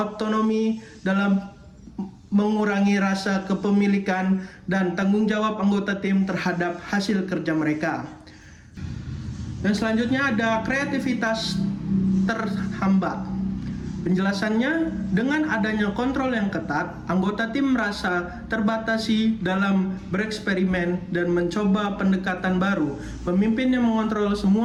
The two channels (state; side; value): identical; both; correlation 1.00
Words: dalam mengurangi rasa kepemilikan dan tanggung jawab anggota tim terhadap hasil kerja mereka. Dan selanjutnya ada kreativitas terhambat. Penjelasannya, dengan adanya kontrol yang ketat, anggota tim merasa terbatasi dalam bereksperimen dan mencoba pendekatan baru. Pemimpin yang mengontrol